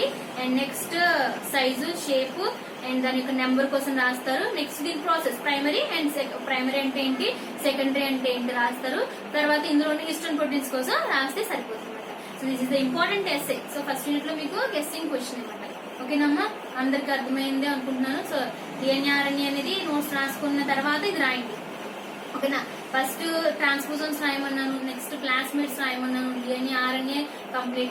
and next size, shape and దాని యొక్క నెంబర్ కోసం రాస్తారు. నెక్స్ట్ దీని ప్రాసెస్ ప్రైమరీ అండ్ ప్రైమరీ అంటే ఏంటి, సెకండరీ అంటే ఏంటి రాస్తారు. తర్వాత ఇందులో హిస్టోన్ ప్రోటీన్స్ కోసం రాస్తే సరిపోతుంది అనమాట. So this is the important essay. So first unit లో మీకు గెస్సింగ్ క్వశ్చన్ అనమాట. ఓకేనమ్మా, అందరికి అర్థమైంది అనుకుంటున్నాను. సో డిఎన్ఏ ఆర్ఎన్ఏ అనేది నోట్స్ రాసుకున్న తర్వాత ఇది రాయండి. ఓకేనా. ఫస్ట్ ట్రాన్స్పోజోన్స్ రాయమన్నాను, నెక్స్ట్ క్లాస్మేట్స్ రాయమన్నాను, డిఎన్ఏ ఆర్ఎన్ఏ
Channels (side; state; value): both; identical; correlation 1.00